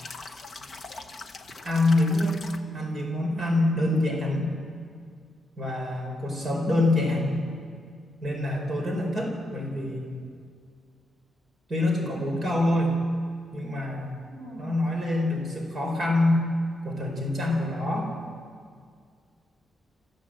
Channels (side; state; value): both; normal; correlation 0.82